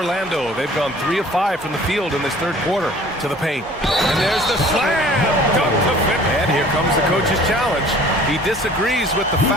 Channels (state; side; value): normal; both; correlation 0.50